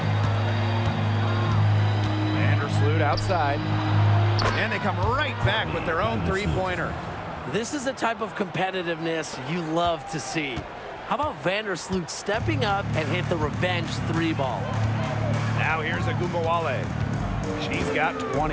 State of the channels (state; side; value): identical; both; correlation 1.00